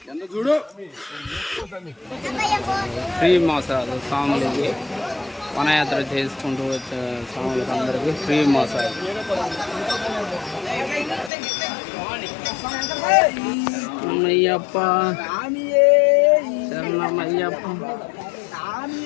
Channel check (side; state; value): right; drops out; at 11.3 s